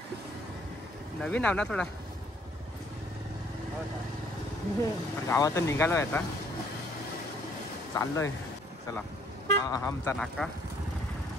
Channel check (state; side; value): normal; both; correlation 0.62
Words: नवीन आव ना थोडा. गावातून निघालोय आता, चाललोय. चला, हा आमचा नाका.